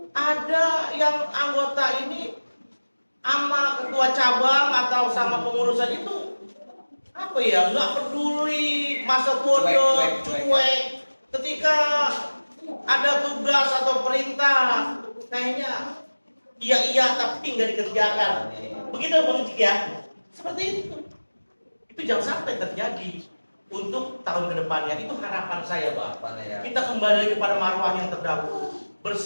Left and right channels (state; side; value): inverted; both; correlation -1.00